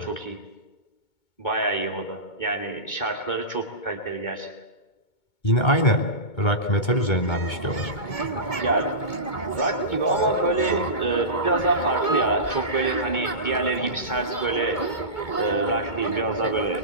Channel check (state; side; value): late; right; 2.2 ms